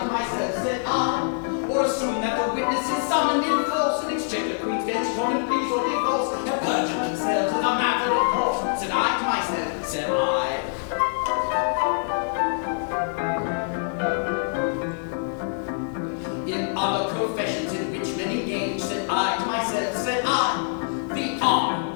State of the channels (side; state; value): right; silent; 62 dB below the other